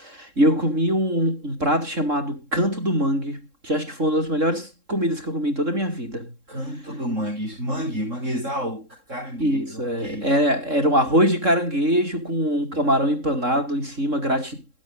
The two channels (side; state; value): left; late; 3.7 ms